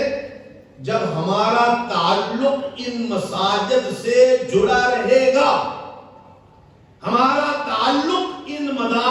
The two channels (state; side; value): identical; both; correlation 1.00